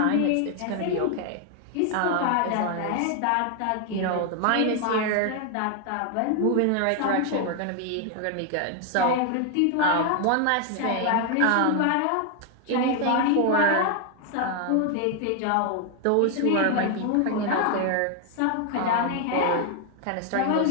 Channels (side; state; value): both; different; correlation 0.00